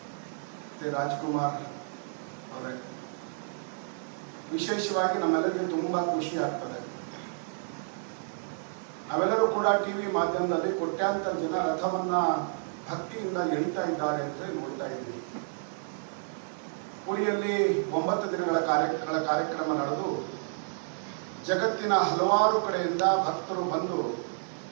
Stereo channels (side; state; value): left; silent; digital silence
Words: ಮತ್ತು ರಾಜ್ಕುಮಾರ್ ಅವರೇ, ವಿಶೇಷವಾಗಿ ನಮ್ಮೆಲ್ಲರಿಗೆ ತುಂಬ ಖುಷಿ ಆಗ್ತದೆ. ನಾವೆಲ್ಲರೂ ಕೂಡ ಟಿವಿ ಮಾಧ್ಯಮದಲ್ಲಿ ಕೋಟ್ಯಾಂತರ ಜನ ರಥವನ್ನ ಭಕ್ತಿಯಿಂದ ಎಳಿತಾ ಇದ್ದಾರೆ ಅಂತ ನೋಡ್ತಾ ಇದ್ವಿ. ಪುರಿಯಲ್ಲಿ 9 ದಿನಗಳ ಕಾರ್ಯಕ್ರಮ ನಡೆದು ಜಗತ್ತಿನ ಹಲವಾರು ಕಡೆಯಿಂದ ಭಕ್ತರು ಬಂದು